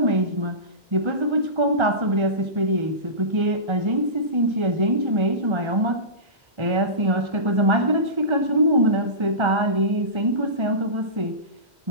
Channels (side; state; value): left; late; 1.3 ms